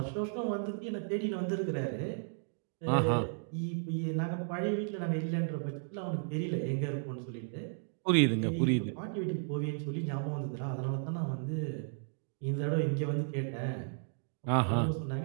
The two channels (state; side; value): silent; left; digital silence